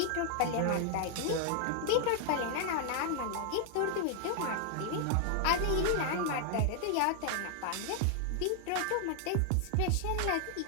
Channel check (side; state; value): both; different; correlation 0.00